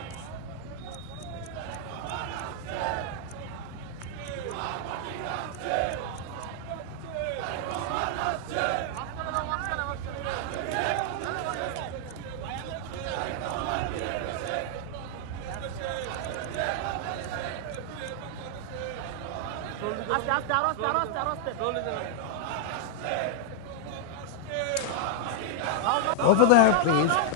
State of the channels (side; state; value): both; different; correlation -0.01